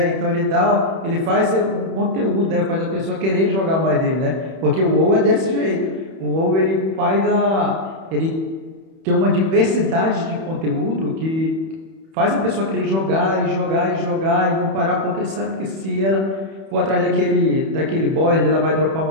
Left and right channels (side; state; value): left; late; 31 ms